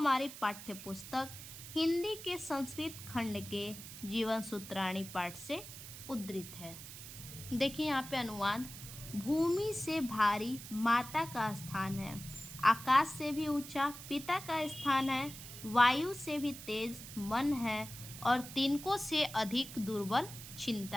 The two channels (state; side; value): noise; right; hiss, 12 dB below the sound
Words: पाठ्य पुस्तक हिंदी के संस्कृत खंड के जीवन सूत्राणी पाठ से उद्धृत है। देखिए यहाँ पे अनुवाद, भूमि से भारी माता का स्थान है, आकाश से भी ऊंचा पिता का स्थान है, वायु से भी तेज मन है और तिनकों से अधिक दुर्बल